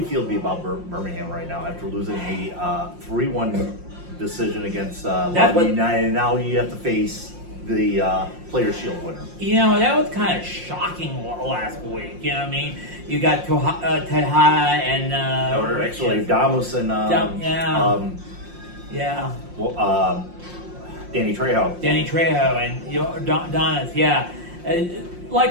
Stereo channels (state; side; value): late; left; 5.6 ms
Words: feel about Birmingham right now after losing a 3-1 decision against Lobby United? And now you have to face the Players' Shield winner. You know, that was kind of shocking last week. You know what I mean? You got Tejada and... Or actually, Damus and... Danny Trejo. Danny Trejo and Donis, yeah.